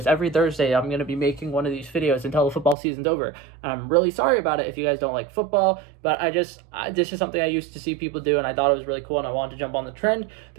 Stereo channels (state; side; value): drops out; left; at 2.8 s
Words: Every Thursday, I'm going to be making one of these videos until the football season's over. And I'm really sorry about it if you guys don't like football, but this is something I used to see people do, and I thought it was really cool, and I wanted to jump on the trend.